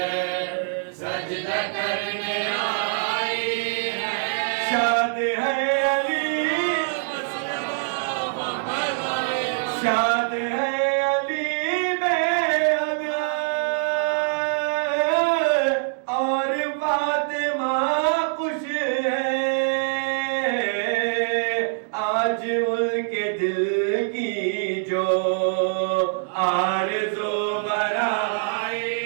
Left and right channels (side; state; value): left; silent; digital silence